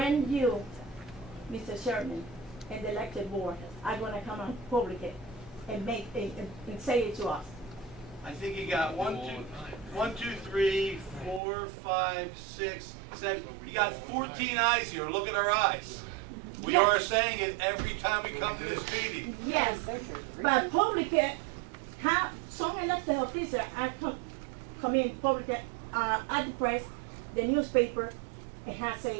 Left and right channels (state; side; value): drops out; left; at 11.4 s